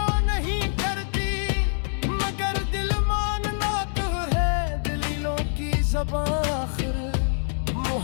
नहीं करती। मगर दिल मानना तो है दलीलों की ज़बान आखिर।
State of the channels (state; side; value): silent; right; digital silence